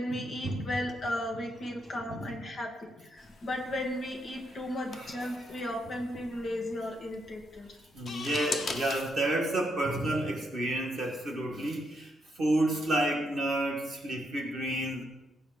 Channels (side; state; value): both; normal; correlation 0.78